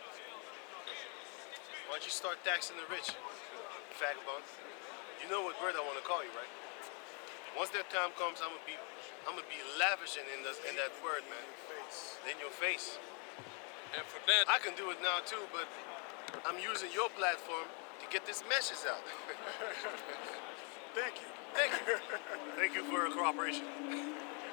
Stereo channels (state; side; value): quieter; right; 36.9 dB